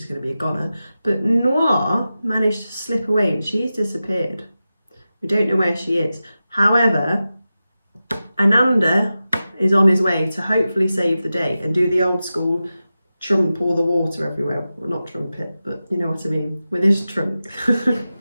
going to be a goner. But Noir managed to slip away and she's disappeared. We don't know where she is. However, Ananda is on his way to hopefully save the day and do the old school trump all the water everywhere. Well, not trumpet, but you know what I mean, with his trunk.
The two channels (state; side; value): inverted; both; correlation -0.93